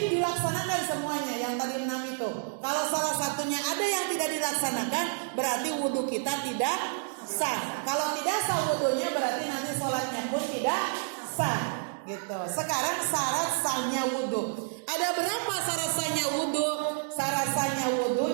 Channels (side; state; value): left; silent; digital silence